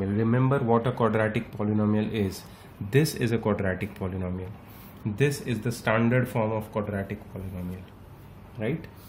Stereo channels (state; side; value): identical; both; correlation 1.00